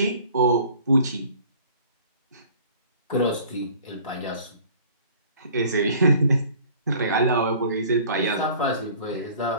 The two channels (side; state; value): both; inverted; correlation -0.50